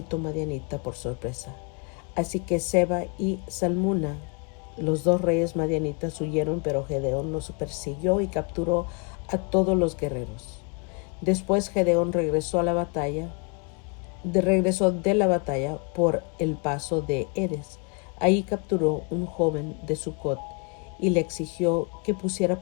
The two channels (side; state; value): right; quieter; 35.2 dB